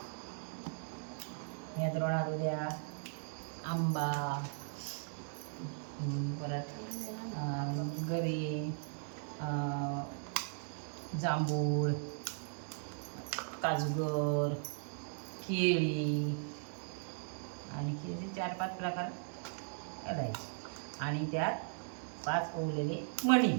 या द्रोणात उद्या आंबा, परत गरी, जांभूळ, काजूगर, केळी आणि केळीचे 4-5 प्रकार घालायचे. आणि त्यात 5 ओवलेले मणी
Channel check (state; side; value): silent; left; 52 dB below the other